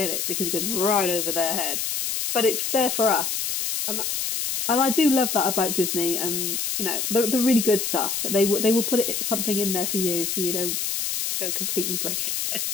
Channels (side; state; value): left; noise; hiss, 1 dB below the sound